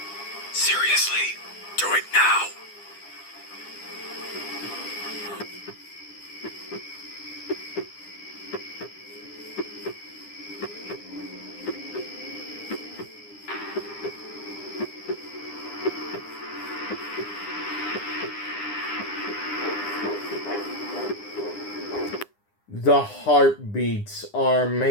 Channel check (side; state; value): right; late; 9.9 ms